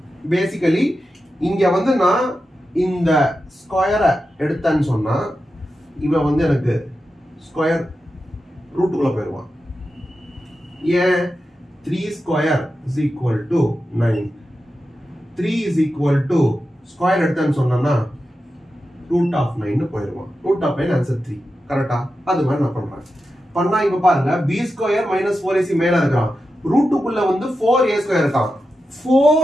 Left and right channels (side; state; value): both; normal; correlation 0.90